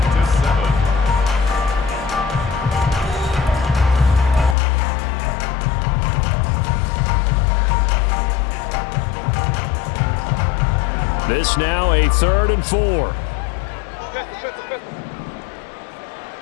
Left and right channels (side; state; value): right; drops out; at 4.5 s